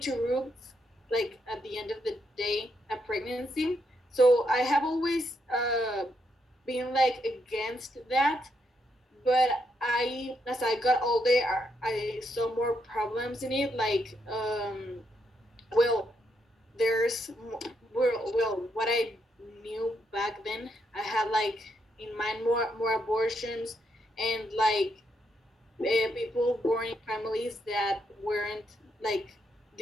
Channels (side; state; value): both; normal; correlation 0.78